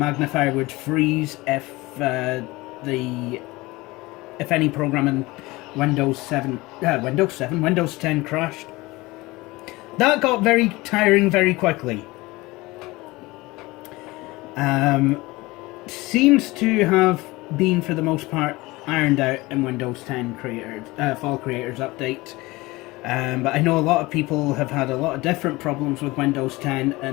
would freeze if any program in Windows 10 crashed. That got very tiring very quickly. Seems to have been, for the most part, ironed out in Windows 10 Fall Creators Update. But I know a lot of people have had a lot of different problems with Windows 10,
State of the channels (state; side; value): quieter; right; 21.3 dB